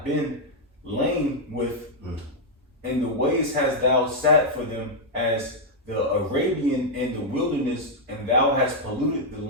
been lain with, and the ways hast thou sat for them as the Arabian in the wilderness, and thou hast polluted the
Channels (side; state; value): both; normal; correlation -0.03